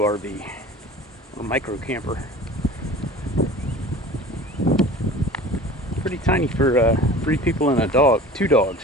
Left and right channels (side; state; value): both; normal; correlation 0.41